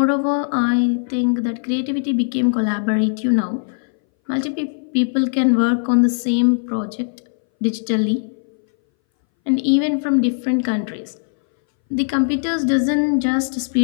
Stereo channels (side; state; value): right; silent; 62 dB below the other